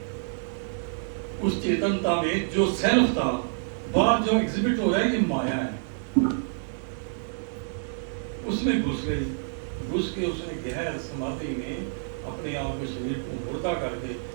उस चेतनता में जो सेल्फ था, बाहर जो एग्जिबिट हो रहा है, ये माया है, उसमें घुस गई। घुस के उसने गहर समाधि में अपने आप को, शरीर को मुर्दा करके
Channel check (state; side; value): silent; left; digital silence